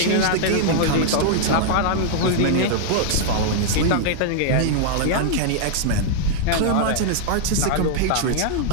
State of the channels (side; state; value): both; different; correlation -0.01